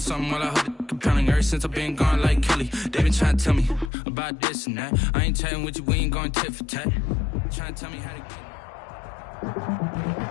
while I hold it compelling. Ever since I've been gone like Kelly, they been trying to tell me about this and that. I ain't chatting with you, we ain't going tit for tat. Trying to tell me how to get.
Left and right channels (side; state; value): right; drops out; at 3.9 s